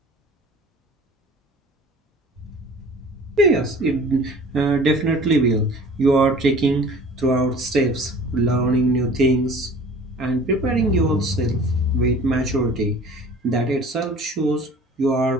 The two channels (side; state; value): both; normal; correlation 0.46